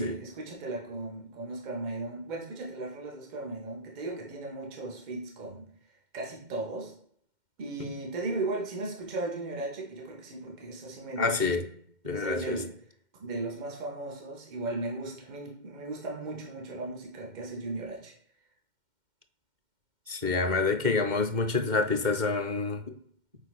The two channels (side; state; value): left; late; 2.1 ms